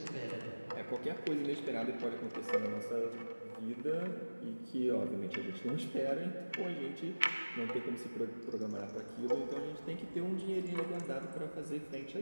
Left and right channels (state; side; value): inverted; both; correlation -1.00